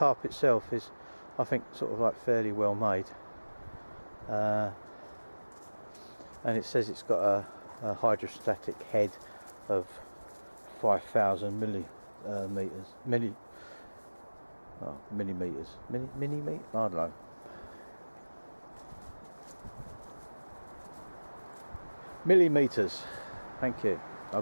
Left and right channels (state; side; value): inverted; both; correlation -1.00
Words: itself is, I think, sort of like fairly well made, and it says it's got a hydrostatic head of 5,000 millimeters. I don't know. Millimeters. Thank you. I'll